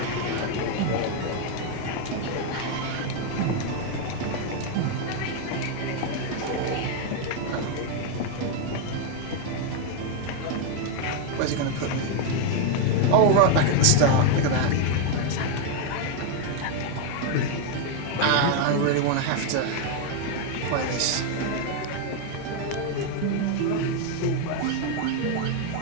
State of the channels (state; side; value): different; both; correlation 0.01